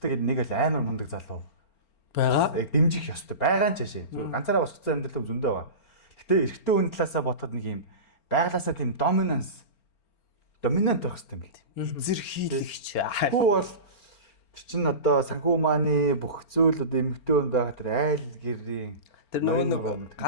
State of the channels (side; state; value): right; late; 4.4 ms